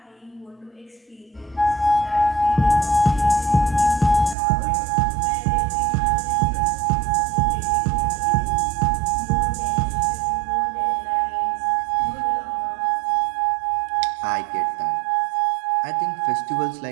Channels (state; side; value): drops out; left; at 4.4 s